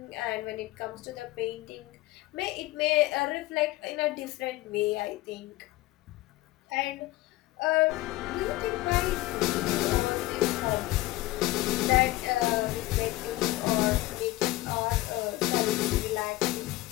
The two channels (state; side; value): quieter; right; 18.4 dB